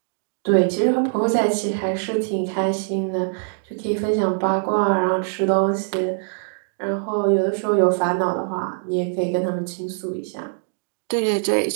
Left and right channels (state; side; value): silent; left; digital silence